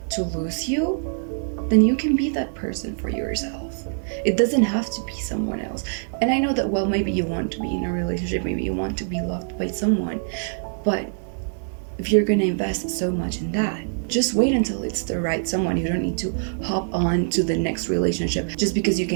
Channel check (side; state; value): left; silent; 63 dB below the other